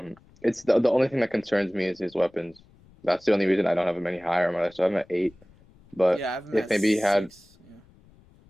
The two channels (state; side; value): noise; left; rumble, 28 dB below the sound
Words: It's the only thing that concerns me is his weapons. That's the only reason I don't have him any higher on my list. So I have him at 8. But Yeah, I have him if at maybe he had 6. Yeah.